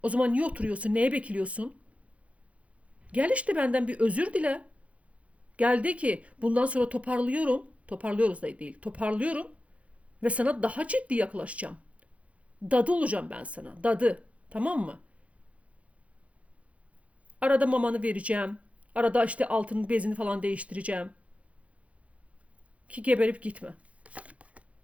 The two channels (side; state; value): left; late; 0.064 ms